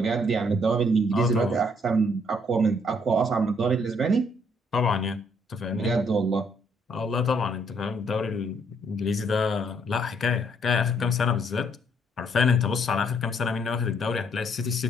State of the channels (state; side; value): normal; both; correlation 0.68